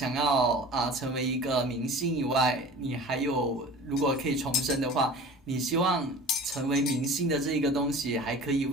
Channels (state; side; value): normal; both; correlation 0.40